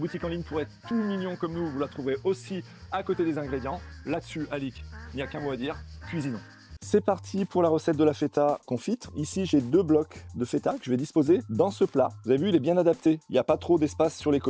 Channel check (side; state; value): both; identical; correlation 1.00